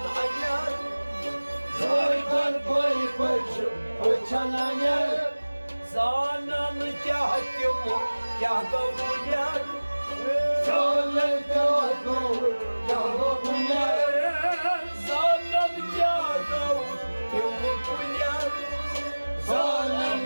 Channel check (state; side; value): inverted; both; correlation -1.00